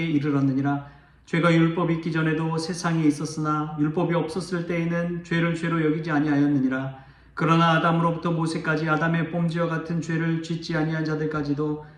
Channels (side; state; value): both; identical; correlation 1.00